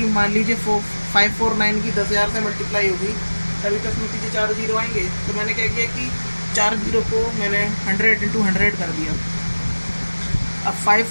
मान लीजिए 549 की 10,000 से मल्टीप्लाई होगी तभी तो इसमें पीछे 4 जीरो आएंगे। तो मैंने क्या किया कि 4 जीरो को मैंने 100 इंटू 100 कर दिया। अब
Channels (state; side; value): inverted; both; correlation -1.00